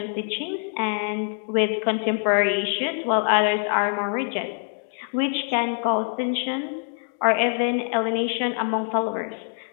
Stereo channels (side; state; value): right; silent; 62 dB below the other